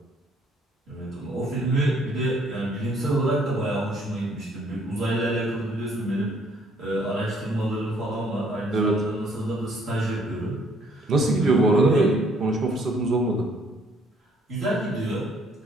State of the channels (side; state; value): both; normal; correlation 0.64